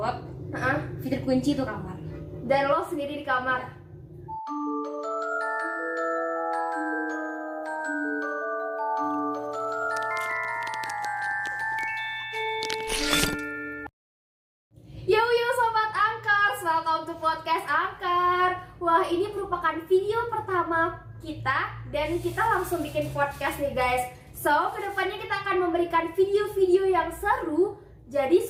Fitri kunci tuh kamar. Dan lo sendiri di kamar. Yo Sobat Angkar, welcome to podcast Angkar. Wah, ini merupakan video pertama kita dan kita langsung bikin podcast nih guys. So, kedepannya kita akan memberikan video-video yang seru. Jadi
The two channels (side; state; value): both; identical; correlation 1.00